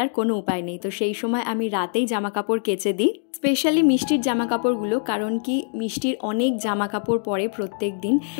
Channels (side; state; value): right; silent; digital silence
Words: কোনো উপায় নেই, তো সেই সময় আমি রাতেই জামা কাপড় কেচে দিই, স্পেশালি মিষ্টির জামা কাপড়গুলো। কারণ কি, মিষ্টির অনেক জামা কাপড় পরে প্রত্যেক দিন,